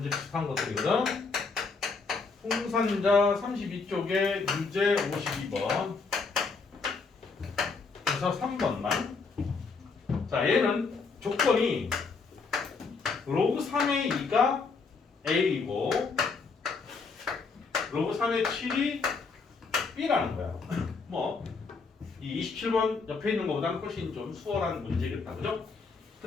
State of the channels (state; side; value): quieter; right; 4.6 dB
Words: 비슷한 것들이거든. 풍산자 32쪽에 유제 52번 그래서 3번만. 자 얘는 조건이 로그 3의 2가 A이고 로그 3의 7이 B라는 거야. 뭐 이 27번 옆에 있는 것보다는 훨씬 좀 수월한 문제겠다, 그죠?